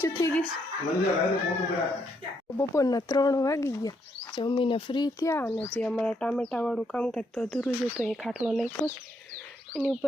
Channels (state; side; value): normal; both; correlation 0.75